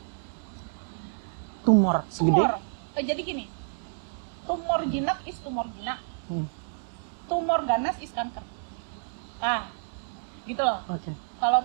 Tumor segede? Jadi gini, tumor jinak is tumor jinak. Tumor ganas is kanker. Gitu loh. Kalau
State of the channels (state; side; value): silent; left; digital silence